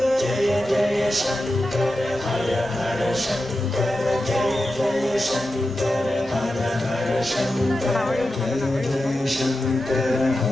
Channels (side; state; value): both; normal; correlation 0.91